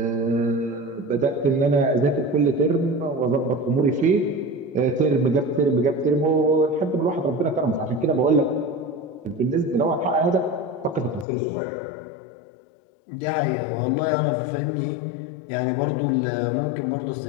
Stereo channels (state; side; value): drops out; right; at 11.2 s